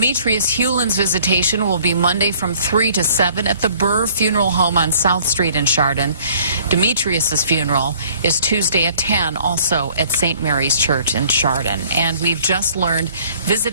Hewlin's visitation will be Monday from 3 to 7 at the Burr Funeral Home on South Street in Chardon. Demetrius's funeral is Tuesday at 10, also at St. Mary's Church in Chardon. And we've just learned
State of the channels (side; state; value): both; inverted; correlation -0.56